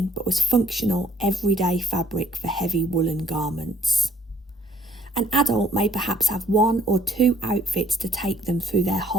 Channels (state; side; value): normal; both; correlation 0.63